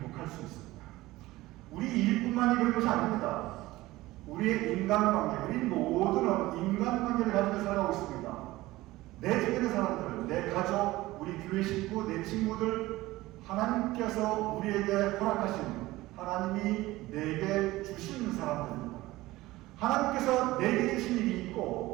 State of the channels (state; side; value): quieter; left; 18.2 dB